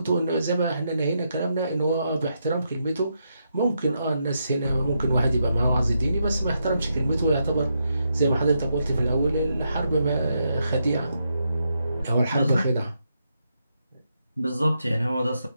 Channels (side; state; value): both; inverted; correlation -0.82